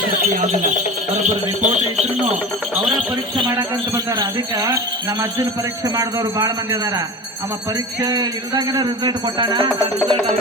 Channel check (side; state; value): both; normal; correlation 0.33